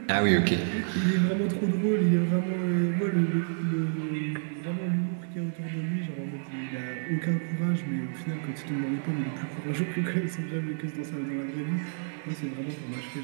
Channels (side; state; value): left; silent; digital silence